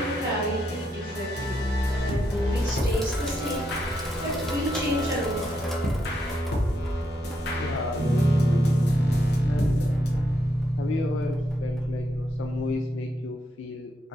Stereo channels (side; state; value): both; normal; correlation 0.80